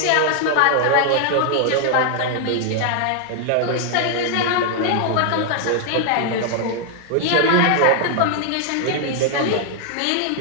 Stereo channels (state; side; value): different; both; correlation 0.00